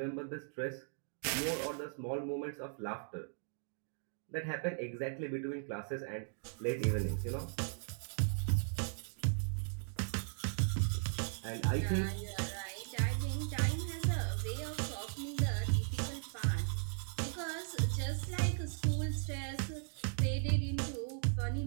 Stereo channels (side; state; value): left; silent; digital silence